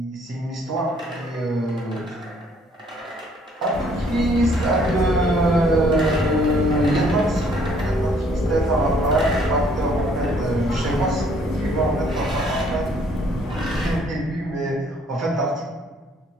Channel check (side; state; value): both; normal; correlation 0.63